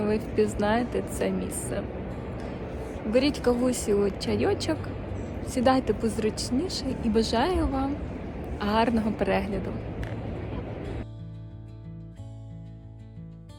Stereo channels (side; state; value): both; identical; correlation 1.00